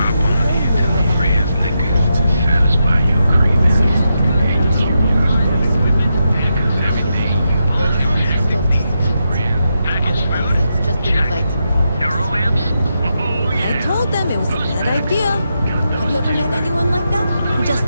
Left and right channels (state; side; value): inverted; both; correlation -0.85